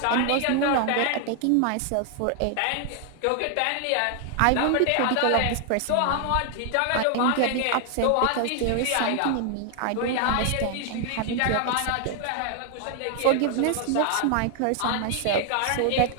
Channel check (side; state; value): both; different; correlation 0.00